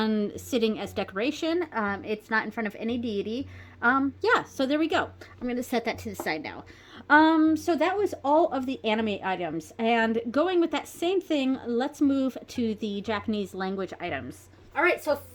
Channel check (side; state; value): both; identical; correlation 1.00